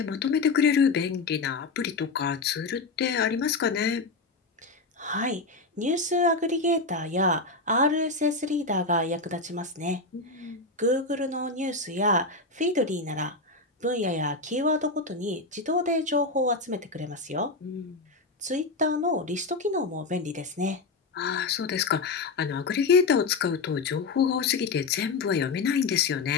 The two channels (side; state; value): right; quieter; 3.7 dB